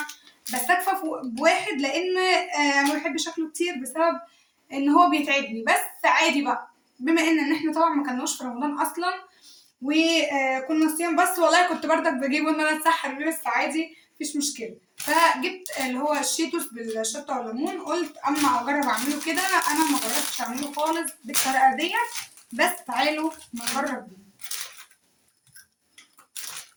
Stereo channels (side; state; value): both; identical; correlation 1.00